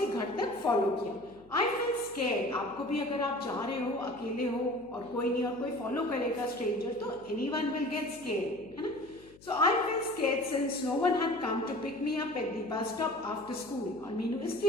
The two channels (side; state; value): left; noise; hum, 24 dB below the sound